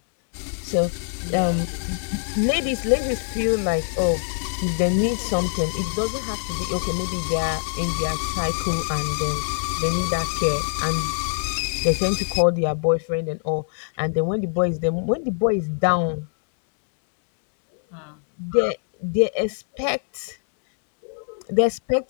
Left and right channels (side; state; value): right; silent; digital silence